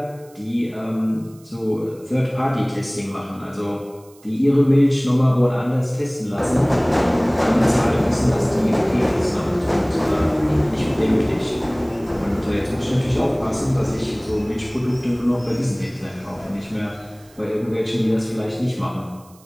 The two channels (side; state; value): right; noise; hiss, 28 dB below the sound